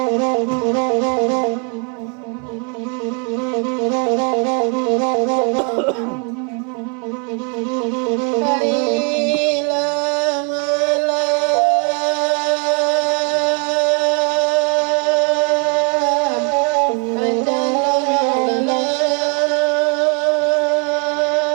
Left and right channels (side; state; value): left; quieter; 37.2 dB